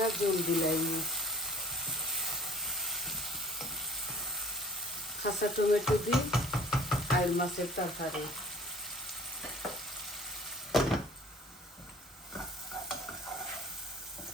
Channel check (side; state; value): both; normal; correlation 0.51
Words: জল দিলাই। কাঁচা টমেটো দিই আর মাছের তরকারি।